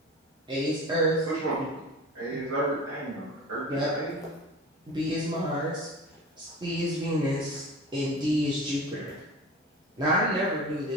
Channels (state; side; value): normal; both; correlation 0.35